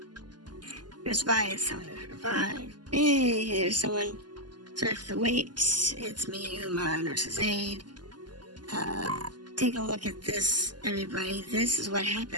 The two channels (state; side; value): late; left; 0.71 ms